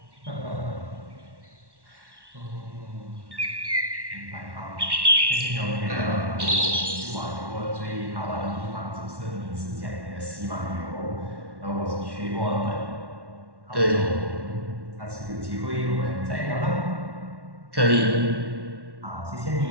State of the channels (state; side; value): late; left; 1.1 ms